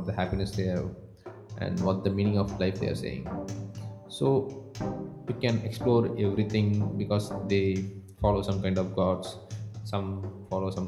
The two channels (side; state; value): both; identical; correlation 1.00